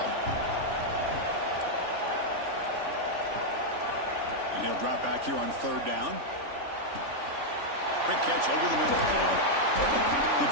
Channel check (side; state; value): left; late; 3.5 ms